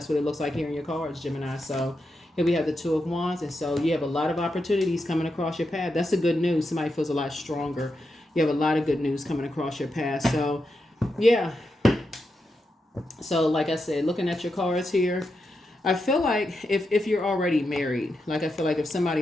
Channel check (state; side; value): normal; both; correlation 0.86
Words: what it looks like here in your cards, Gemini. So here we have the 2 of Wands. And so you have a lot of opportunities coming across your path. That's the good news. Somebody feels a lot stronger. You have a lot of good news coming across your path. So yeah. So like I said, looking at your cards here, I feel like if you're already married, like I feel like if